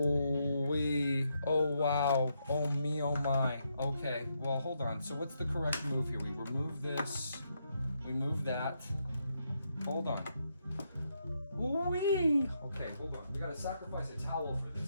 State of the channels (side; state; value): both; inverted; correlation -0.79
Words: wee. Oh wow. Oh me, oh my. Okay, well hold on. So what's the correct move here? We remove this. We move that. Hold on. Wee. Okay, hold on. We gotta sacrifice a towel for